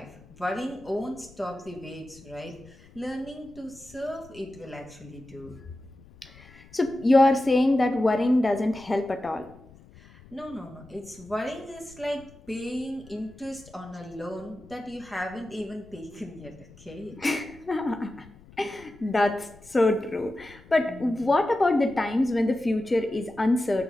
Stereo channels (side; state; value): left; noise; rumble, 23 dB below the sound